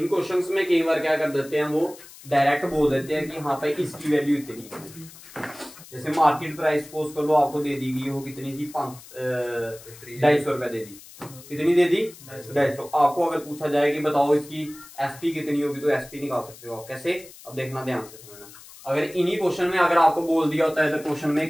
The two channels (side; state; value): left; noise; hiss, 19 dB below the sound